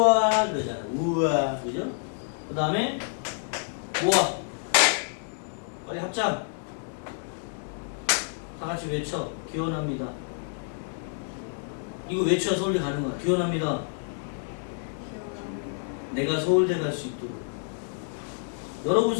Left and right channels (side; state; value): right; silent; 59 dB below the other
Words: 그러잖아. 우와 그죠? 그 다음에 우와 빨리 합장 다 같이 외쳐. 기원합니다. 이거 외쳐야 서울대 가는 거야. 기원합니다. 내가 서울대 갈 수 있도록. 여러분